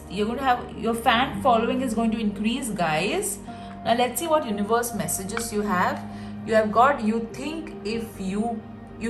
you're going to have your fan following is going to increase, guys. Now let's see what universe messages you have. You have got, you think if you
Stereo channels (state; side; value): identical; both; correlation 1.00